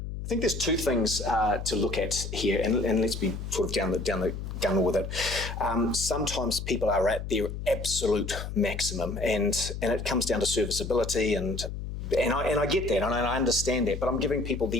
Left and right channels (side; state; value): left; noise; hum, 6 dB below the sound